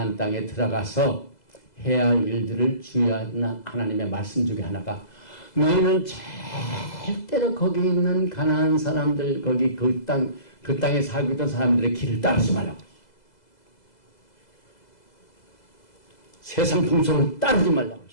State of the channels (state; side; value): late; right; 2.0 ms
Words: 땅에 들어가서 해야 할 일들을 주의하는 하나님의 말씀 중에 하나가 너희는 절대로 거기 있는 가나안 사람들 거기 그 땅에 살고 있던 사람들의 길을 따르지 말라고. 세상 풍속을 따르지 말라고.